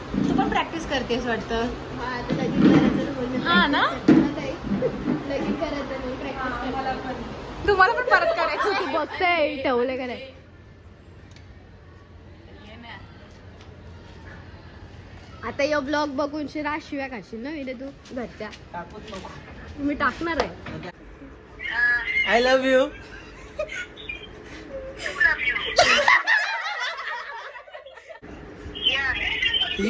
तू पण प्रॅक्टिस करतेस वाटतं. हा ना लगीन करायचं नाही प्रॅक्टिस. तुम्हाला पण परत करायचं. बघताय ठेवले का नाही. आता यो ब्लॉग बघून शिव्या खाशील ना विरे तू घरच्या. मी टाकणार आहे. I love you.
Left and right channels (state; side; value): identical; both; correlation 1.00